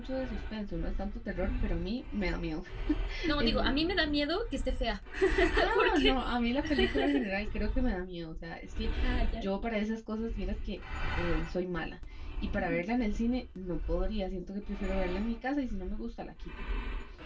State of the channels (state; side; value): identical; both; correlation 1.00